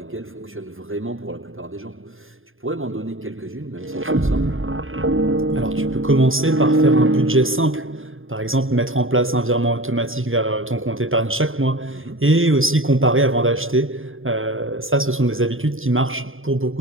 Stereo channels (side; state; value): left; late; 0.59 ms